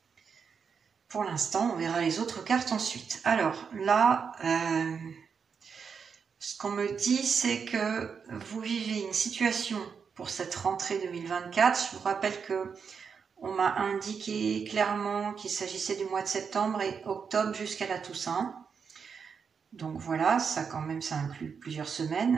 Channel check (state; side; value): quieter; left; 6.2 dB